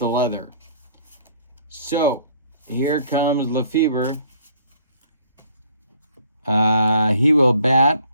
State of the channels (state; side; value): inverted; both; correlation -0.58